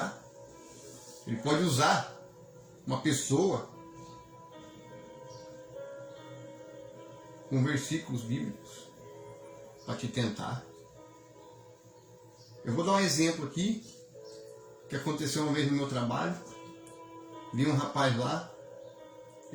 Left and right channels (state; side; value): identical; both; correlation 1.00